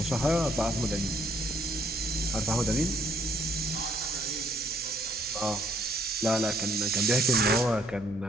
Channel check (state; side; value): normal; both; correlation 0.66